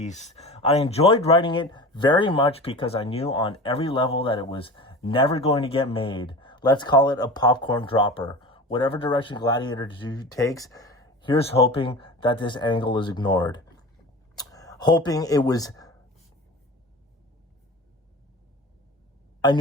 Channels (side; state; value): both; normal; correlation 0.34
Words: I enjoyed writing it very much because I knew on every level that it was never going to get made. Let's call it a popcorn dropper. Whatever direction Gladiator 2 takes, here's hoping that this angle is ignored. Hoping it was... I